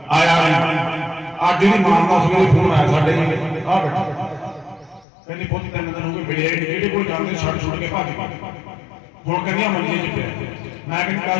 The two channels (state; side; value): drops out; right; at 5.1 s